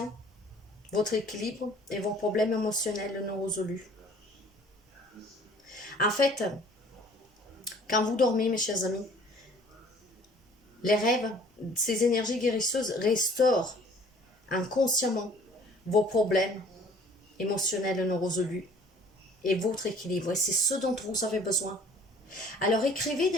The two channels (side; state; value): both; normal; correlation 0.53